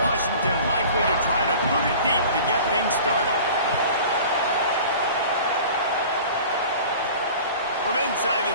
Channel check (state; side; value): inverted; both; correlation -0.42